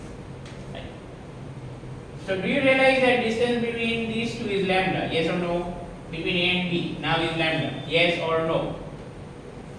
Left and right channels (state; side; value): identical; both; correlation 1.00